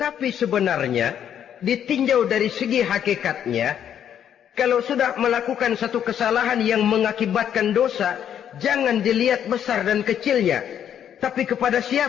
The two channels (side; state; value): right; quieter; 9.4 dB